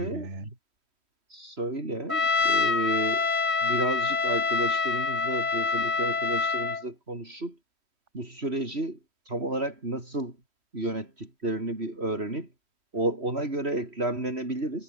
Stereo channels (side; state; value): left; late; 3.1 ms